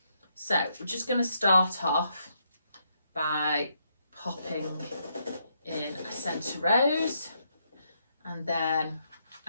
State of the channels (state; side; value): inverted; both; correlation -0.77